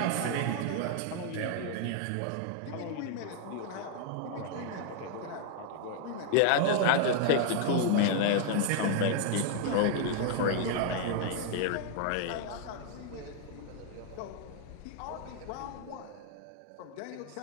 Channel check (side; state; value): both; different; correlation 0.00